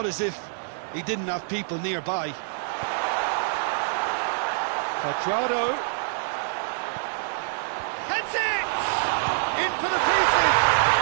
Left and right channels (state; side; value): silent; left; digital silence